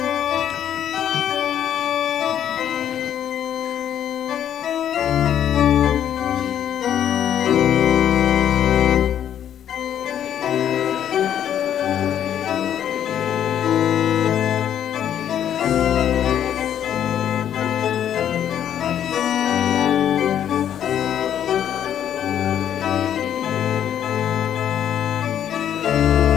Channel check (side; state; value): right; quieter; 10.0 dB